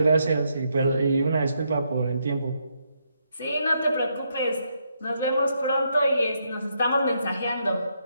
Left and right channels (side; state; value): both; inverted; correlation -0.77